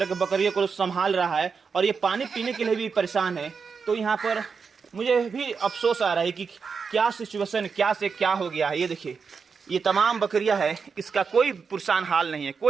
के बकरियों को संभाल रहा है, और ये पानी पीने के लिए भी परेशान है। तो यहाँ पर मुझे भी अफसोस आ रहा है कि क्या सिचुएशन, क्या से क्या हो गया है। ये देखिए, ये तमाम बकरियां है, इसका कोई पुरसान हाल नहीं है,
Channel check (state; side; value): quieter; left; 5.6 dB